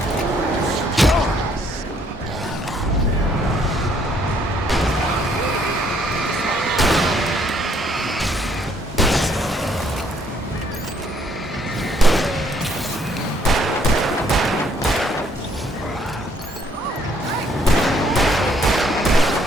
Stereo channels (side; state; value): both; normal; correlation 0.66